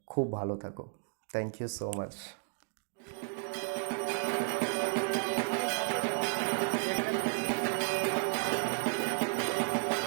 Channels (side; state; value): left; silent; digital silence